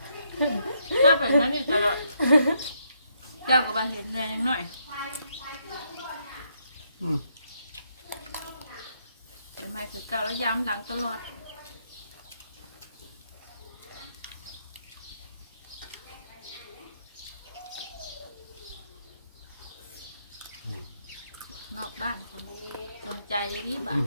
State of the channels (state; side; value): inverted; both; correlation -0.75